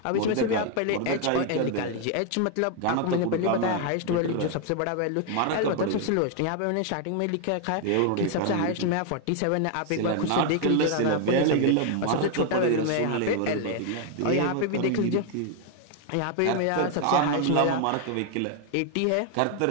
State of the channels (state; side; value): different; both; correlation 0.00